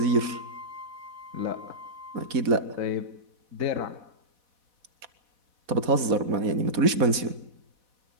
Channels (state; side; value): late; left; 4.1 ms